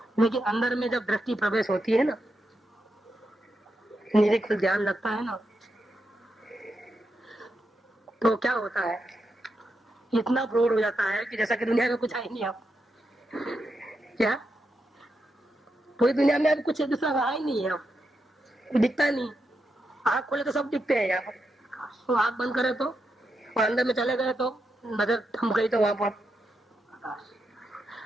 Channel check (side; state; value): both; normal; correlation 0.85